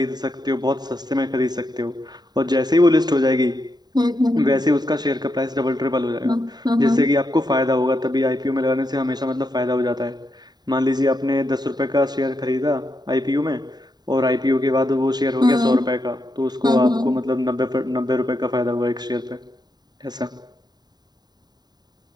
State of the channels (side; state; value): left; late; 0.20 ms